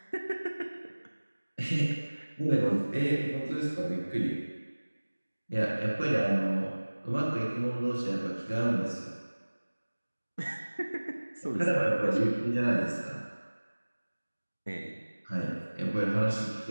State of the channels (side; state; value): both; inverted; correlation -1.00